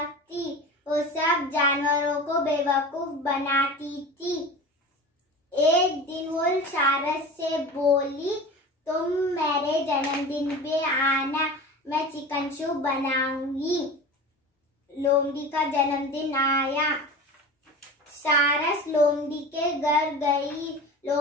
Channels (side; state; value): both; normal; correlation 0.33